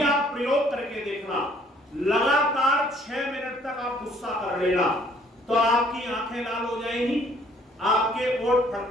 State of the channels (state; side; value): normal; both; correlation 0.61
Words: आप प्रयोग करके देखना, लगातार 6 मिनट तक आप गुस्सा कर लेना, तो आपकी आंखें लाल हो जाएंगी, आपके ओठ